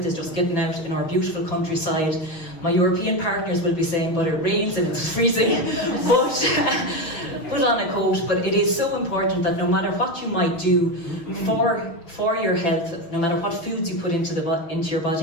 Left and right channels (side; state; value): right; late; 6.1 ms